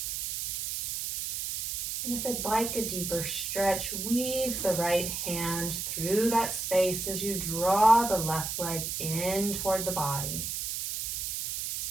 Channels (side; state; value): right; noise; hiss, 3 dB below the sound